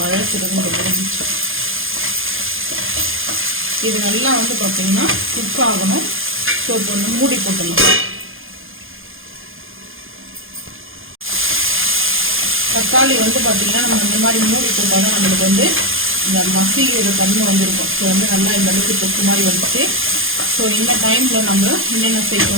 முடிஞ்சிச்சு. இது நல்லா வந்து பார்த்தீங்கன்னா குக் ஆகணும். ஸோ இப்போ வந்து மூடி போட்டுடலாம். தக்காளி வந்து பார்த்தீங்கன்னா நம்ம இந்த மாதிரி மூடி போட்டால் தான் நம்மளுக்கு வந்து இந்த மசிக்கிற தன்மை வந்துருக்கும். ஸோ வந்து நல்லா இந்த அளவுக்கு தொக்கு மாதிரி வந்துச்சு. ஸோ இந்த டைமில் நம்ம என்னென்ன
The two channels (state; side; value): late; left; 0.59 ms